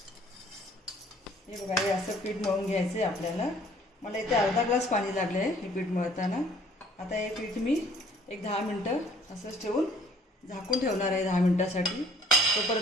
हे बघा, हे असं पीठ मळून घ्यायचं आहे आपल्याला. मला इथे अर्धा ग्लास पाणी लागलं आहे हे पीठ मळताना. आता हे पीठ मी एक 10 मिनटं असंच ठेवून झाकून ठेवणार आहे 10 मिनटासाठी.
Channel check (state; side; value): normal; both; correlation 0.57